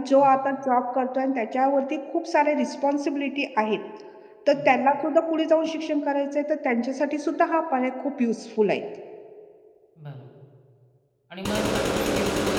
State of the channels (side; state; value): both; identical; correlation 1.00